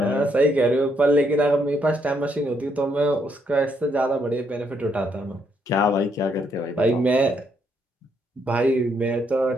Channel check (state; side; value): normal; both; correlation 0.74